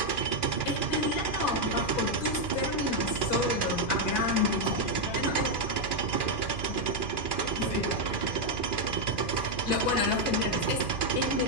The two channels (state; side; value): late; right; 2.4 ms